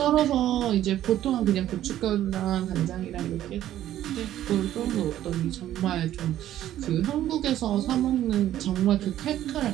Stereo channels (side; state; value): left; quieter; 12.5 dB